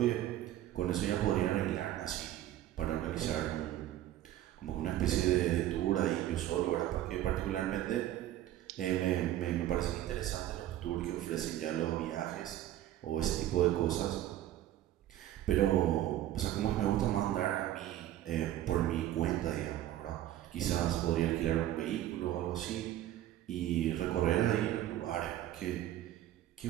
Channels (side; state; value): left; quieter; 13.1 dB